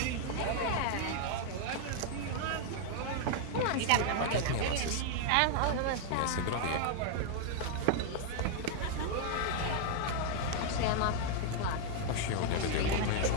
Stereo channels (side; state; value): both; different; correlation 0.00